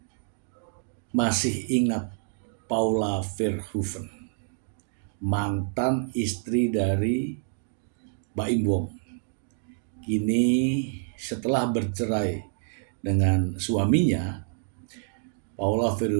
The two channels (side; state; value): left; silent; digital silence